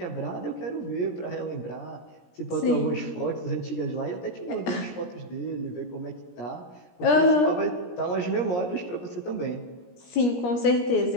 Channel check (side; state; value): right; late; 17 ms